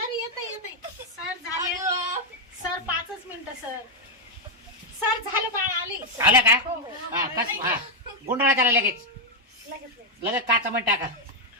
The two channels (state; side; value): normal; both; correlation 0.00